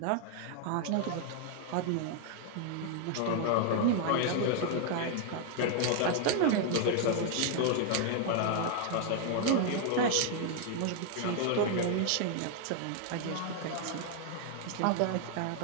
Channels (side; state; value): both; different; correlation 0.00